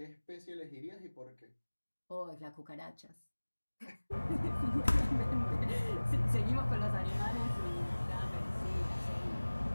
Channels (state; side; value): inverted; both; correlation -1.00